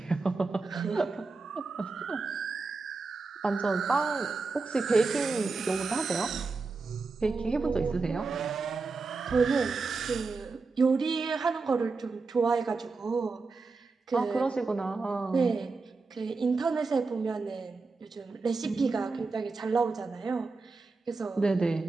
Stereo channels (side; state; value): left; quieter; 4.1 dB